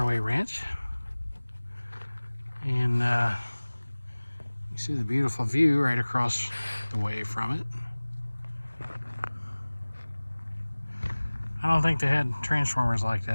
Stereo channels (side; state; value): both; inverted; correlation -1.00